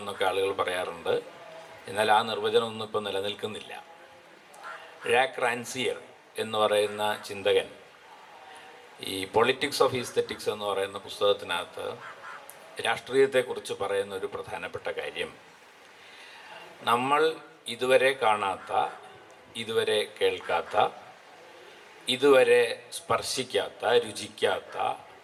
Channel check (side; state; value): both; identical; correlation 1.00